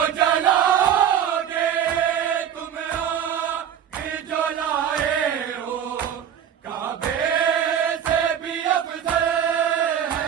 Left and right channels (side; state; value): left; quieter; 9.3 dB